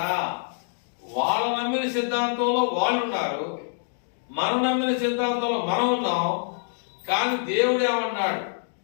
వాళ్ళ నమ్మిన సిద్ధాంతంలో వాళ్ళు ఉన్నారు, మనం నమ్మిన సిద్ధాంతంలో మనం ఉన్నాం. కానీ దేవుడు ఏమన్నాడు?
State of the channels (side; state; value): right; silent; digital silence